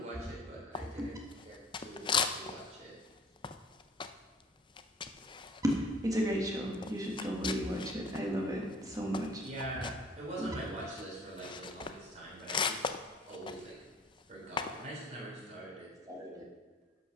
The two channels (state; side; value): normal; both; correlation 0.50